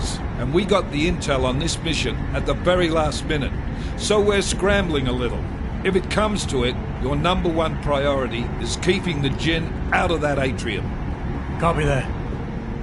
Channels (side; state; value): both; identical; correlation 1.00